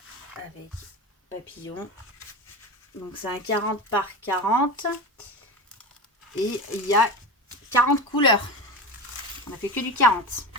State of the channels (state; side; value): normal; both; correlation 0.25